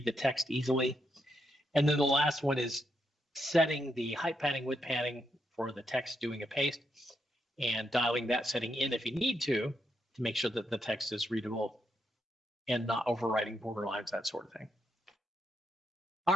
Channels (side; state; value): both; normal; correlation 0.80